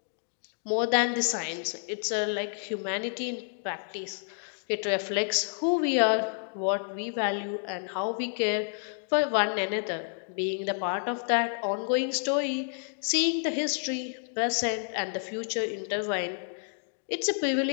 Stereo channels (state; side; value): silent; right; 58 dB below the other